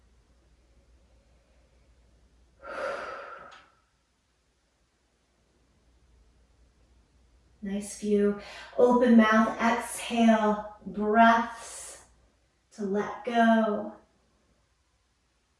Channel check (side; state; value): both; identical; correlation 1.00